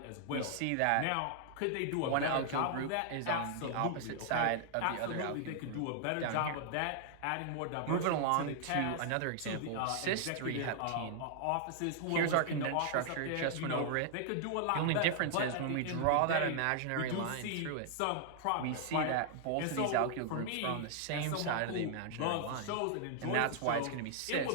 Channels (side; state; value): both; different; correlation 0.00